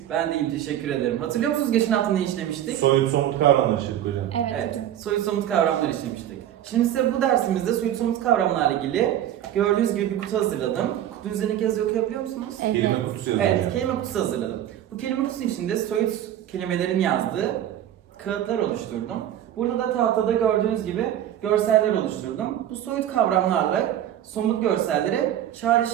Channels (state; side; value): quieter; left; 11.4 dB